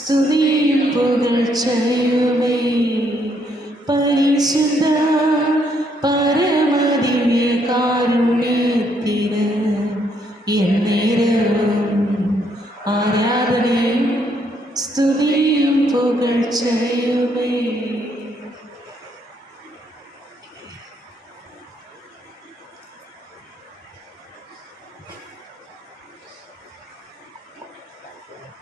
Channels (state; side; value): normal; both; correlation 0.72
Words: പുകഴ്ചയുമേ. പരിശുദ്ധ പരമദിവ്യകാരുണ്യത്തിന് എന്നേരവും ആരാധനയും സ്തുതിയും പുകഴ്ചയുമേ.